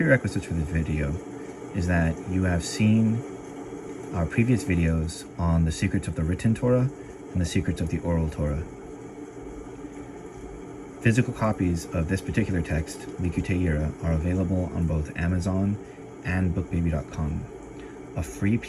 for this video is that you have seen our previous videos on the secrets of the written Torah and the secrets of the oral Torah. Physical copies of this particular text, Likutei Yira, are available on both Amazon and bookbaby.com. A free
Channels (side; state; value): both; identical; correlation 1.00